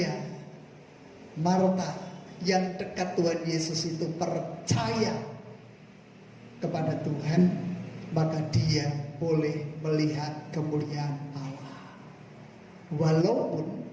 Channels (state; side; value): identical; both; correlation 1.00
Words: Marta yang dekat Tuhan Yesus itu percaya kepada Tuhan, maka dia boleh melihat kemuliaan Allah. Walaupun